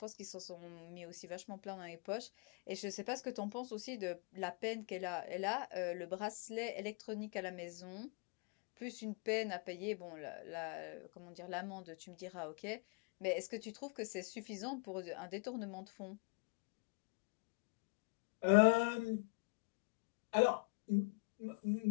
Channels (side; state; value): right; quieter; 31.9 dB